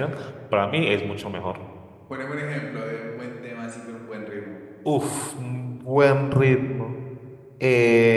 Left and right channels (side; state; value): both; identical; correlation 1.00